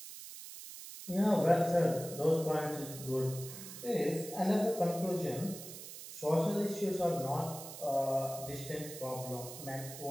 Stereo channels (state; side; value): noise; right; hiss, 12 dB below the sound